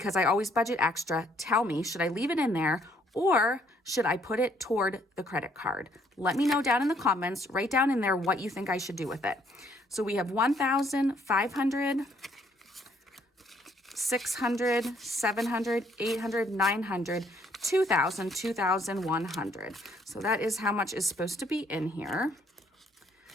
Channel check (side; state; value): both; normal; correlation 0.67